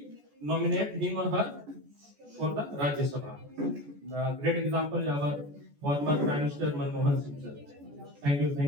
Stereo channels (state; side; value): late; left; 14 ms